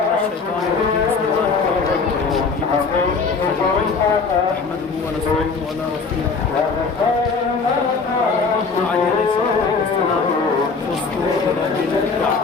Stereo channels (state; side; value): quieter; right; 4.7 dB